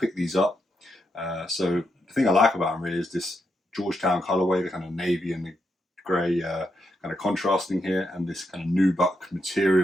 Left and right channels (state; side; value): normal; both; correlation 0.82